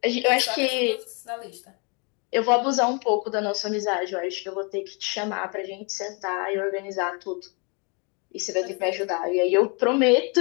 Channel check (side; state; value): right; quieter; 33.7 dB